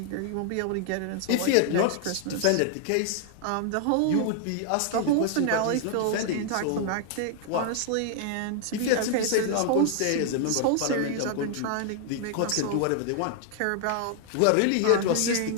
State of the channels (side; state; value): both; different; correlation 0.00